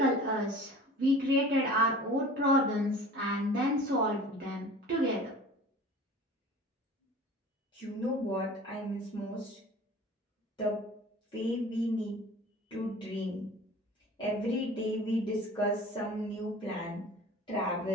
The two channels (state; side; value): normal; both; correlation 0.42